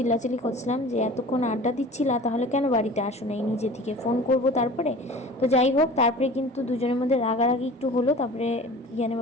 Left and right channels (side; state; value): both; normal; correlation 0.41